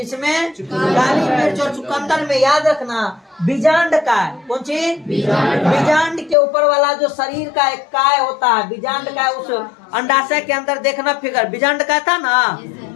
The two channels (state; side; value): drops out; right; at 6.4 s